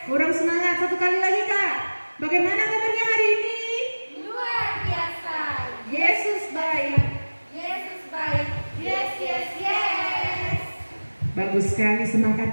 Kurang semangat, satu kali lagi kak. Bagaimana kabarnya hari ini? Luar biasa. Yesus baik. Yesus baik. Yes. Bagus sekali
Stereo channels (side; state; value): both; inverted; correlation -1.00